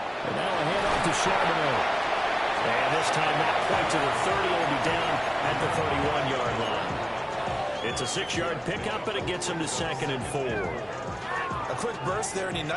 And now a handoff to Charbonnet. And this time not quite to the 30. Will be down at the 31-yard line. It's a 6-yard pickup, but it gets him to 2nd and 4. A quick burst there, and he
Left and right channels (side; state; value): both; identical; correlation 1.00